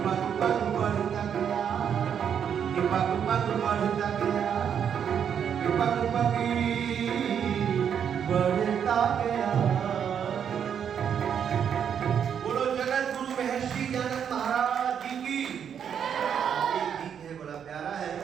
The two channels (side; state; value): left; quieter; 8.1 dB